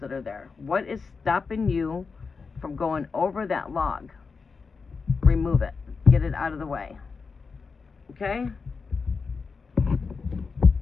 that are there. What is stopping you from going over that log? Remove it. Get it out of the way. Okay?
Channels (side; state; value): right; quieter; 4.9 dB